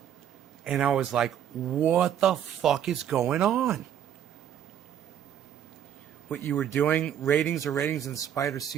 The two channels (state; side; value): quieter; left; 9.8 dB